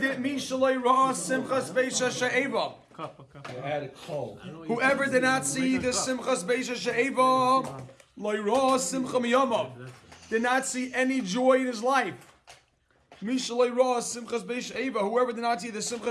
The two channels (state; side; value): identical; both; correlation 1.00